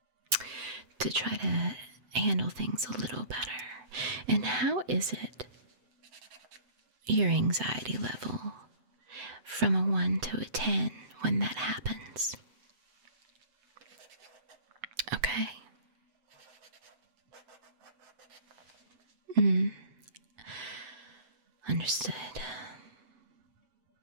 try to handle things a little better. And how is it your anxiety level from a 1 to a 10 when that happens? Okay. Understood.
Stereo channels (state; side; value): late; left; 7.9 ms